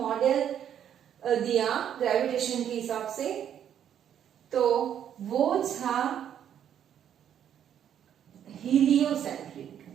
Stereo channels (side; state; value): left; quieter; 9.5 dB